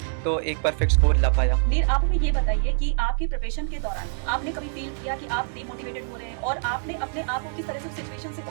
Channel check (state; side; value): silent; left; 62 dB below the other